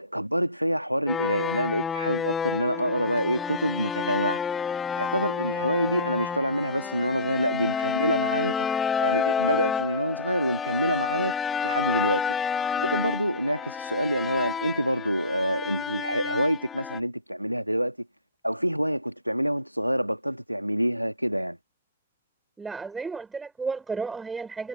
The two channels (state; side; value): inverted; both; correlation -0.42